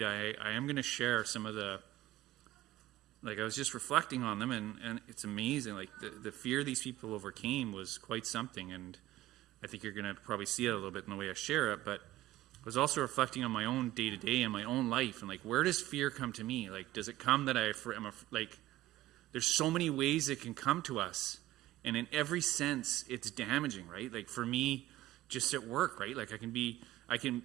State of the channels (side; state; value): left; quieter; 15.4 dB